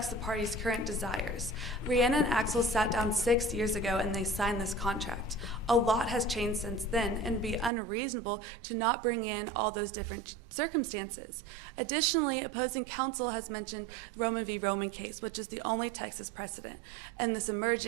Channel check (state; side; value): drops out; left; at 7.7 s